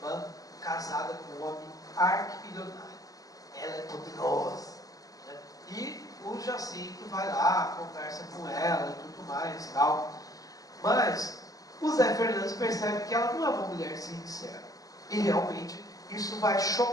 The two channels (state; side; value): late; right; 0.17 ms